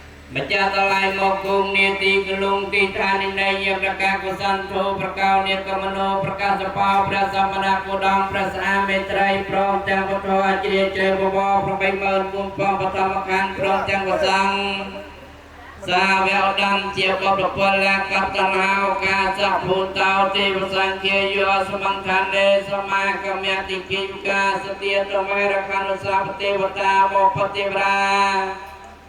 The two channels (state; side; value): identical; both; correlation 1.00